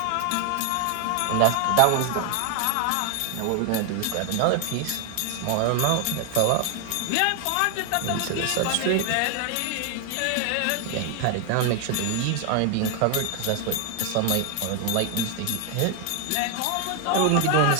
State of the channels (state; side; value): different; both; correlation 0.01